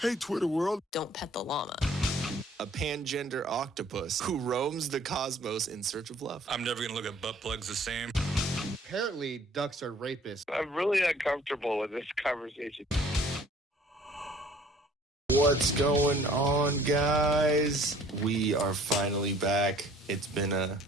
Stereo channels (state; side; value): normal; both; correlation 0.55